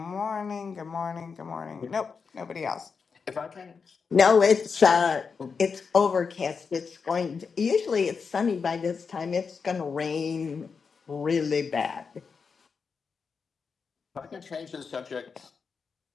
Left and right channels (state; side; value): quieter; right; 5.4 dB